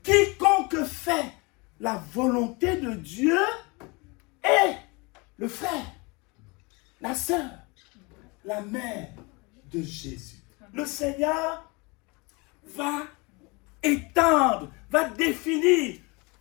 Quiconque fait la volonté de Dieu est le frère, la sœur, la mère de Jésus. Le Seigneur va étendre, va définir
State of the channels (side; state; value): right; quieter; 27.7 dB